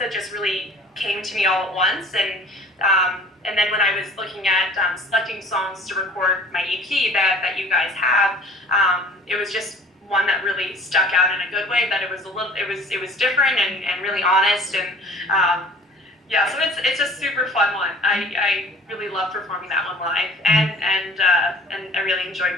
just really came to me all at once, and then when I was looking at selecting songs to record my EP that you guys have, it was just one that really stuck out in a good way, that it was different and really honest, and so it's a super fun one. I really love performing that one live, and I really enjoyed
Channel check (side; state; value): both; normal; correlation 0.49